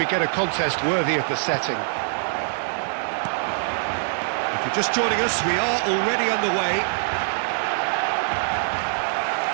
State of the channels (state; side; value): silent; left; digital silence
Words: get a contest worthy of the setting. If you're just joining us, we are already underway.